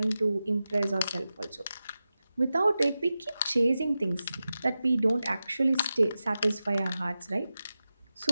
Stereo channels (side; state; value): both; inverted; correlation -0.93